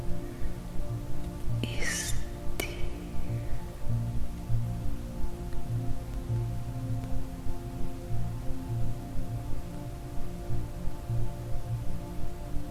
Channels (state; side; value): identical; both; correlation 1.00